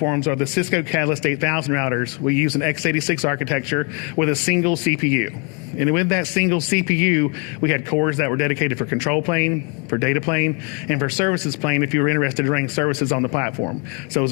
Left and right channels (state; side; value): quieter; right; 33.7 dB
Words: are the Cisco Catalyst 8000 routers. We use an x86 architecture with a single CPU. And with that single CPU, we had cores that were dedicated for control plane, for data plane, and for services plane if you were interested in running services on the platform. So it was